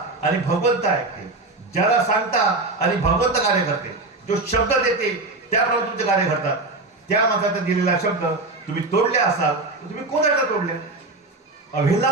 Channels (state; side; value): quieter; left; 3.2 dB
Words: आणि भगवंत ऐकते, ज्याला सांगता आणि भगवंत कार्य करते, जो शब्द देते त्याप्रमाणे तुमचे कार्य घडतात. त्या माणसाचा दिलेला शब्द तुम्ही तोडले असाल तर तुम्ही कोणाला तोडले,